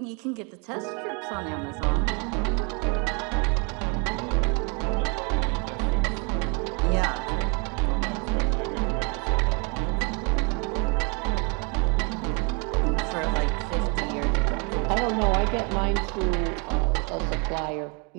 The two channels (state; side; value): quieter; left; 33.5 dB